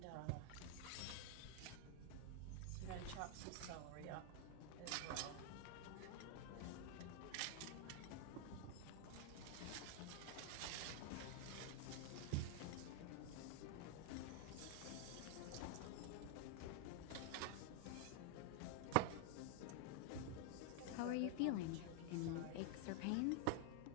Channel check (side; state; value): both; different; correlation 0.00